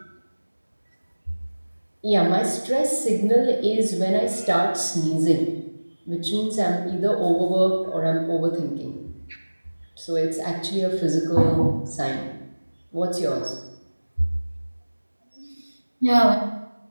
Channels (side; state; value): both; inverted; correlation -1.00